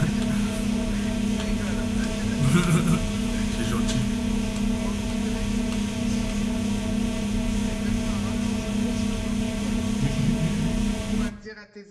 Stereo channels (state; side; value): identical; both; correlation 1.00